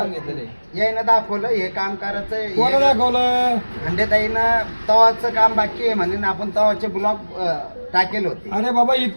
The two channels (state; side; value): inverted; both; correlation -1.00